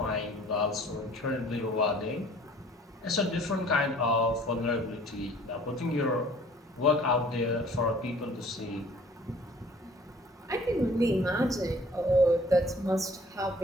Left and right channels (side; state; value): both; normal; correlation 0.53